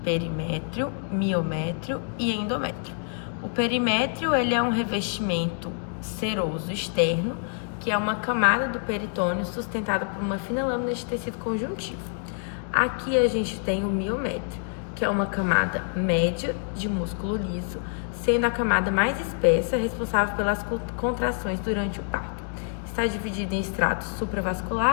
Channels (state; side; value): silent; right; 61 dB below the other